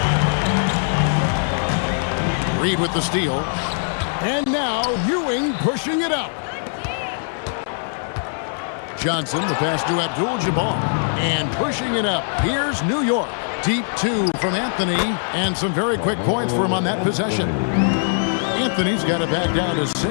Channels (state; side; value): silent; right; digital silence